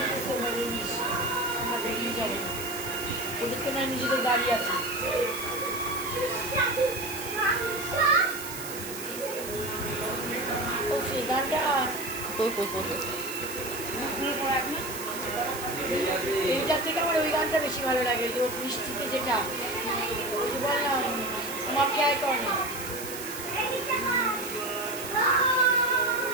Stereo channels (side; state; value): right; noise; hiss, 10 dB below the sound